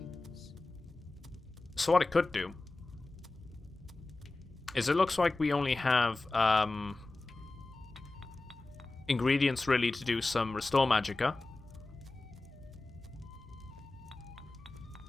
So what it could do is it looks like we only have ingredients really to do some restore magicka.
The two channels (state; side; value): quieter; right; 3.1 dB